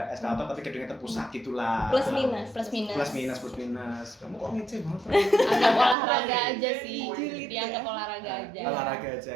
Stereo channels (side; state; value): left; drops out; at 6.0 s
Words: eskalator tapi gedungnya terpusat gitulah. Plus minus. Plus minus. Plus minus. Kamu kok ngeceh banget? Agak olahraga aja sih. Julid Dianggap ya. olahraga aja. Olahraga aja.